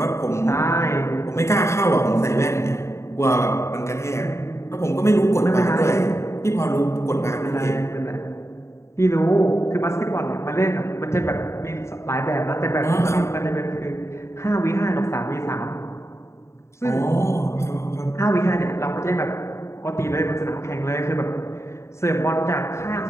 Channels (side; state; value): right; late; 0.14 ms